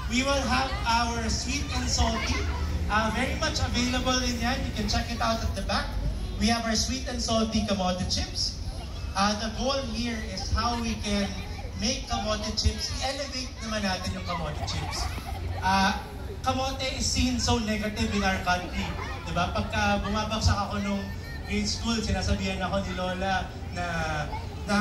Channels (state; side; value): identical; both; correlation 1.00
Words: We will have our sweet and salty, very much available in yan. You can check it out at the back. We have our sweet and salty kamote chips. The goal here is how we can make kamote chips, i-elevate naman natin yung kamote chips. Kamote is seen so negative in our country. Diba? Pagka bumabagsak ako nung grade school, sinasabihan ako ni Lola na